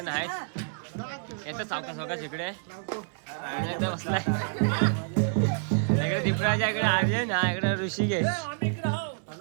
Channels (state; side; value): silent; left; digital silence